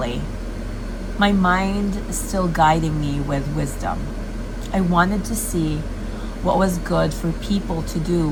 my mind still guiding me with wisdom. I wanted to see what was good for people to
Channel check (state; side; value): identical; both; correlation 1.00